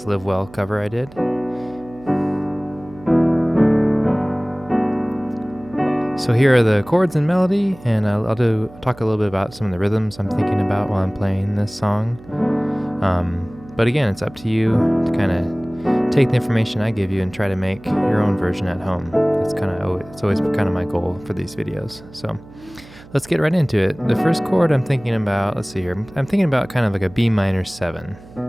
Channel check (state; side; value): noise; right; hum, 21 dB below the sound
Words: Live Well cover I did. So here are the chords and melody, and I'll talk a little bit about some of the rhythms I'm thinking about while I'm playing this song. But again, it's up to you to kind of take the information I give you and try to make your own version at home. It's always kind of my goal for these videos. So let's get right into it. The first chord I'm thinking about, let's see here, I'm thinking about kind of like a B minor 7.